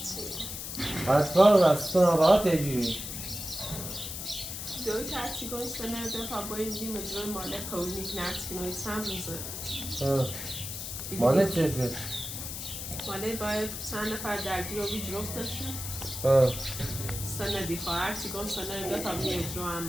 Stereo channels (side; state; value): left; noise; hiss, 7 dB below the sound